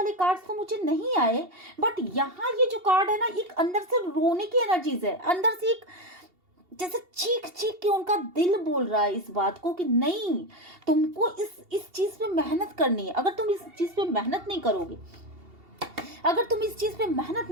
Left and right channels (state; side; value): late; left; 2.7 ms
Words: कार्ड्स तो मुझे नहीं आए, बट यहाँ ये जो कार्ड है ना, एक अंदर से रोने की एनर्जीज है, अंदर से एक जैसे चीख चीख के उनका दिल बोल रहा है इस बात को कि नहीं, तुमको इस चीज पे मेहनत करनी है। अगर तुम इस चीज पे मेहनत नहीं करोगे, अगर तुम इस चीज पे मेहनत